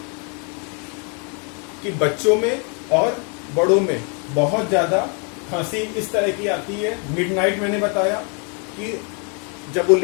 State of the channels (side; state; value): right; quieter; 37.4 dB